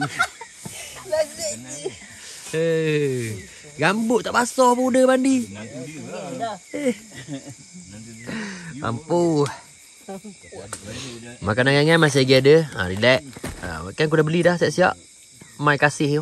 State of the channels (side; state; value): both; identical; correlation 1.00